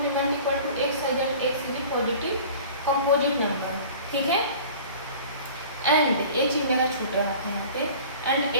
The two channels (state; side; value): inverted; both; correlation -0.43